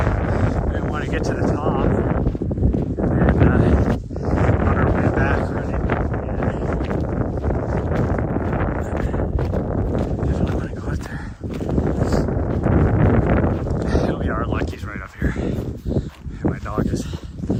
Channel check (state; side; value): identical; both; correlation 1.00